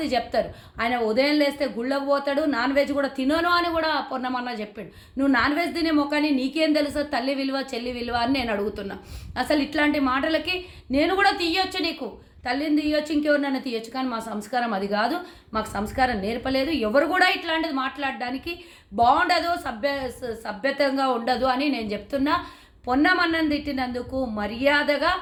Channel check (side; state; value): both; identical; correlation 1.00